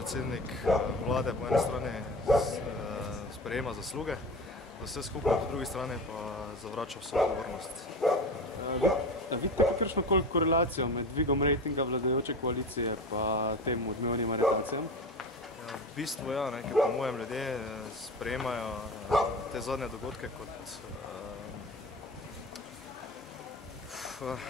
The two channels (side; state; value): both; normal; correlation 0.29